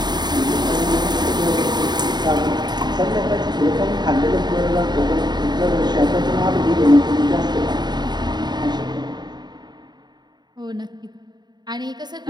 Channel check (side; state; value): left; late; 0.21 ms